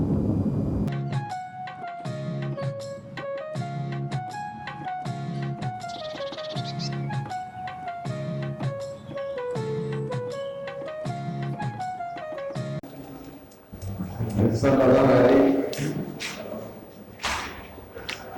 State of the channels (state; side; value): identical; both; correlation 1.00